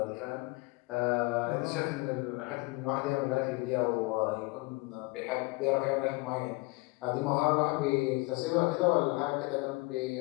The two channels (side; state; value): right; quieter; 25.8 dB